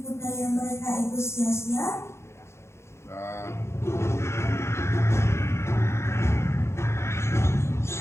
daya mereka itu sia-sia?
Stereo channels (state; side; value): late; right; 0.13 ms